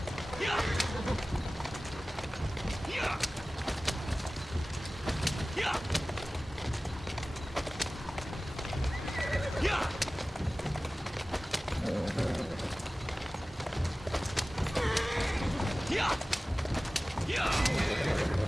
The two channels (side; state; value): both; normal; correlation 0.97